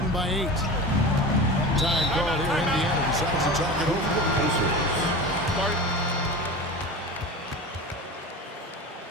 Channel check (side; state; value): both; normal; correlation 0.31